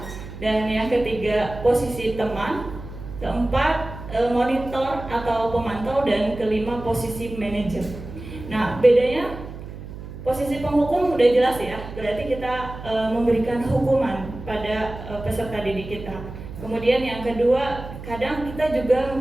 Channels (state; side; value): noise; right; hum, 12 dB below the sound